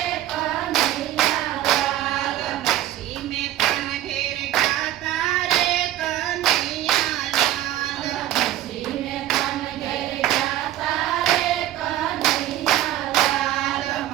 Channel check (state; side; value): quieter; left; 13.5 dB